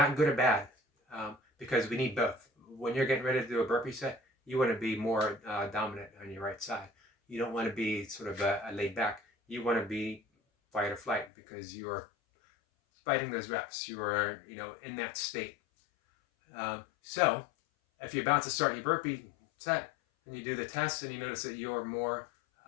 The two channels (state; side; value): drops out; right; at 11.3 s